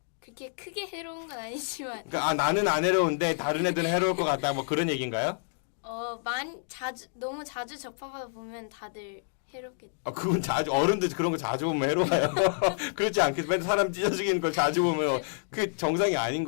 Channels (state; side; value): silent; right; digital silence